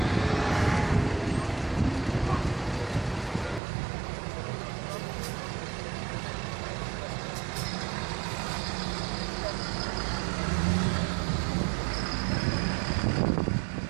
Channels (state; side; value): drops out; left; at 3.6 s